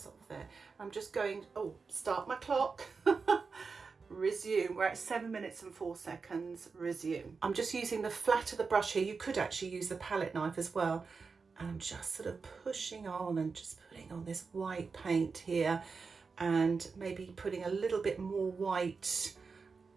off there. I'm just going, start my clock. Resume. We're at 7 minutes and 4 seconds. Resume. I'm just using the flat of the brush here. You could actually use the palette knife as well. And I'm just sort of pushing on and just putting on this white paint here, and maybe putting a little bit more white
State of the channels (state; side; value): quieter; left; 4.8 dB